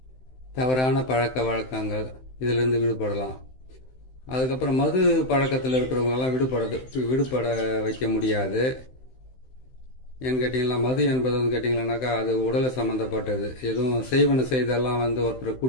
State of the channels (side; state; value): right; late; 16 ms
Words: தவறான பழக்க வழக்கங்கள் இதிலிருந்து விடுபடலாம். அதுக்கப்புறம் மது பழக்கத்தில் இருக்கிறவங்களெல்லாம் விடுபட வைக்க முடியாது. ஏன்னு கேட்டிங்கன்னா மது என்பது வந்து கேட்டிங்கன்னாக்கா அது உடலை சம்மந்தப்பட்டது. எதுவும் செய்வன செய்தெல்லாம் வந்து ஒருத்தரை